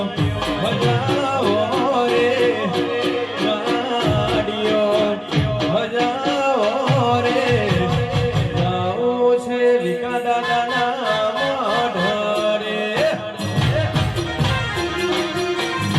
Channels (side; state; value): both; identical; correlation 1.00